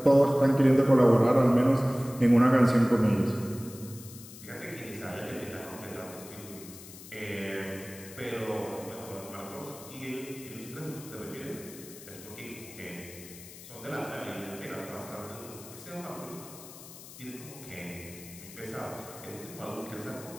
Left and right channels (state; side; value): noise; left; hiss, 16 dB below the sound